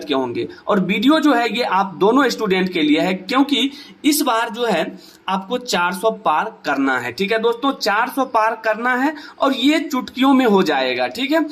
के होंगे। और वीडियो जो है ये आप दोनों स्टूडेंट के लिए है, क्योंकि इस बार जो है आपको 400 पार करना है, ठीक है दोस्तों। 400 पार करना है और ये चुटकियों में हो जाएगा, ठीक है।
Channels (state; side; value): identical; both; correlation 1.00